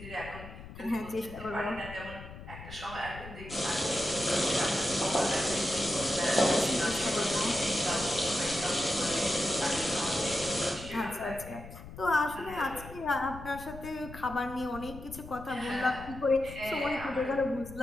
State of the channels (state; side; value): noise; left; rumble, 14 dB below the sound